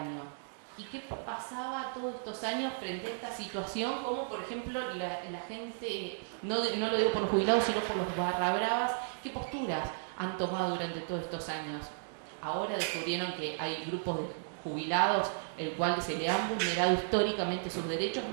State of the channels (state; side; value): silent; left; digital silence